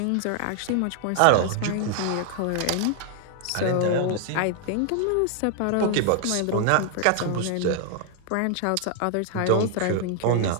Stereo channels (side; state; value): both; different; correlation 0.00